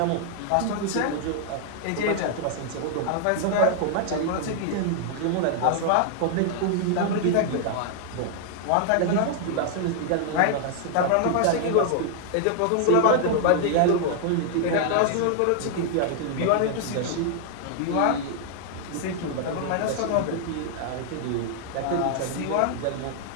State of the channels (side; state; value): both; different; correlation 0.00